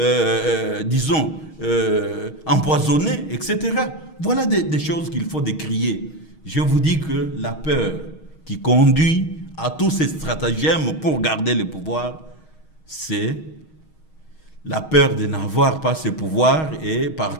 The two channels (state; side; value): late; right; 6.4 ms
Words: disons, empoisonnés, etc. Voilà des choses qu'il faut décrier. Je vous dis que la peur qui conduit à tous ces stratagèmes pour garder le pouvoir, c'est la peur de n'avoir pas ce pouvoir et